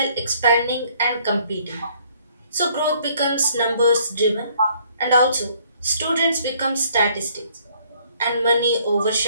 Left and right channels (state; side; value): inverted; both; correlation -0.63